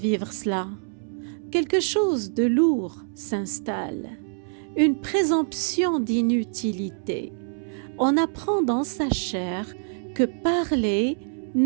cela, quelque chose de lourd s'installe, une présomption d'inutilité. On apprend dans sa chair que parler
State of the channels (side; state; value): left; silent; 61 dB below the other